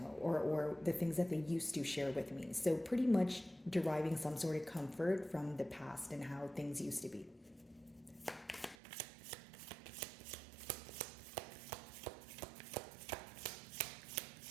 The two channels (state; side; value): drops out; left; at 8.8 s